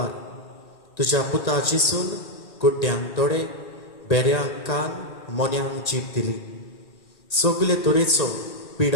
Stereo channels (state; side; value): late; right; 1.8 ms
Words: तुज्या पुता जिसून गुड्ड्यांक दोळे, बेऱ्यांक कान, मोन्यांक जीब दिली. सगले तरेचो